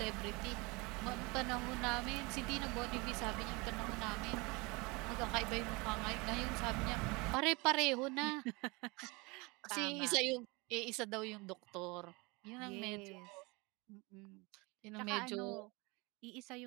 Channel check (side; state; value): left; quieter; 26.4 dB